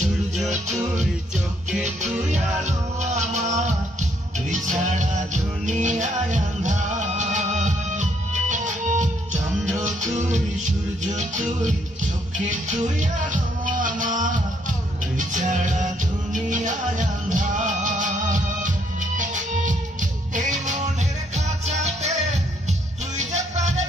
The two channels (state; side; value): normal; both; correlation 0.71